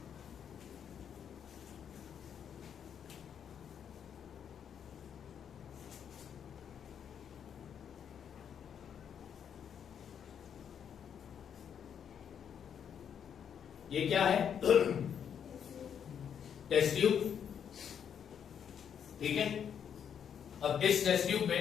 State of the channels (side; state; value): right; quieter; 8.2 dB